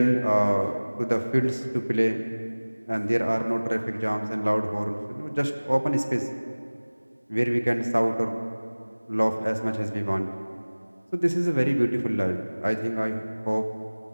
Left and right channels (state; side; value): inverted; both; correlation -1.00